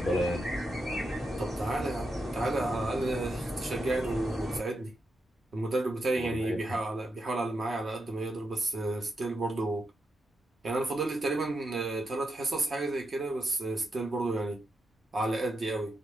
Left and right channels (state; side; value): normal; both; correlation 0.85